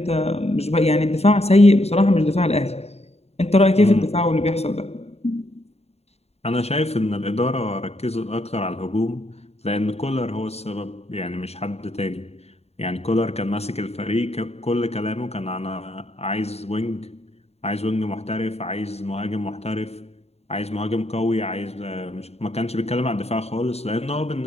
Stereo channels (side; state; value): right; late; 0.30 ms